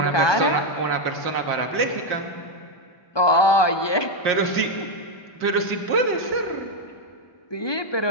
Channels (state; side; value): late; right; 1.2 ms